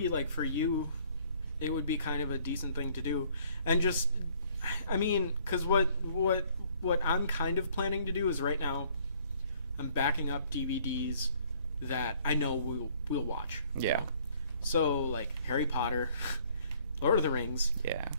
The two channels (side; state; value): both; inverted; correlation -0.60